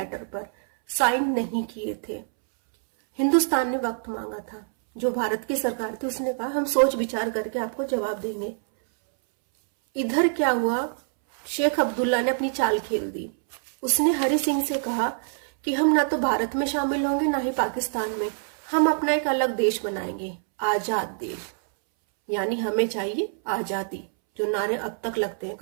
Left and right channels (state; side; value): silent; left; 61 dB below the other